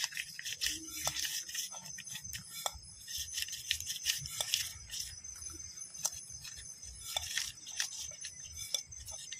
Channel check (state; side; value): identical; both; correlation 1.00